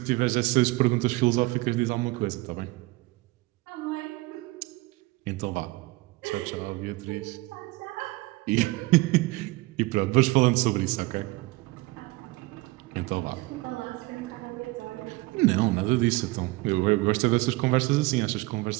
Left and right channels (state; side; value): quieter; left; 22.0 dB